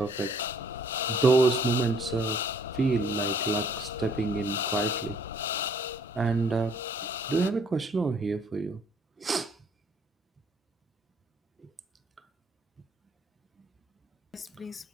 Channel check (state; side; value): normal; both; correlation 0.62